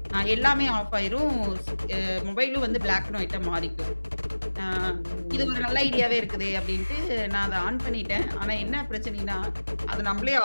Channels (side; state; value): both; inverted; correlation -1.00